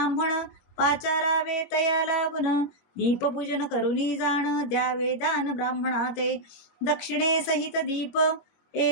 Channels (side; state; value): right; late; 21 ms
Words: पाचारावे तया लागून, दीपपूजन करुनी जाण द्यावे दान ब्राह्मणाते. दक्षिणे सहित दीप